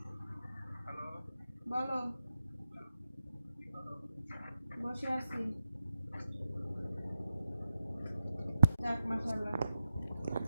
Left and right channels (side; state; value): both; inverted; correlation -0.91